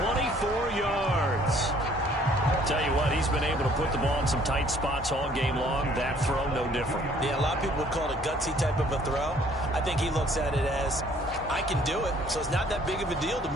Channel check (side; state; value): both; normal; correlation 0.59